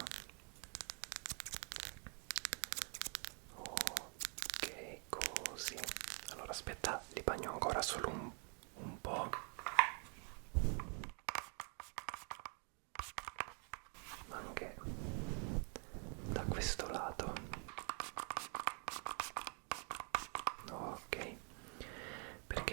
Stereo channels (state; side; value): quieter; left; 39.5 dB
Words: Ok, così. Allora aspetta, li bagno ancora solo un po'. Anche da questo lato. Ok,